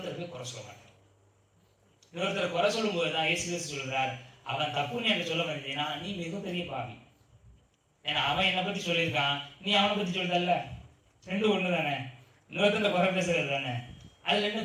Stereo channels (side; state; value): both; identical; correlation 1.00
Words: போய் குறை சொல்ல மாட்டார். இன்னொருத்தர் குறை சொல்லும் போதுதான் இயேசு கிறிஸ்து சொல்கிறார், அவன் தப்புன்னு எனக்கு சொல்ல வந்தீங்கன்னா நீ மிகப்பெரிய பாவி. ஏன்னா அவன் என்னை பத்தி சொல்லியிருக்கான், நீ அவனை பத்தி சொல்றல்ல, ரெண்டும் ஒண்ணு தானே. இன்னொருத்தர் குறை பேசுறது தானே, அதுல என்ன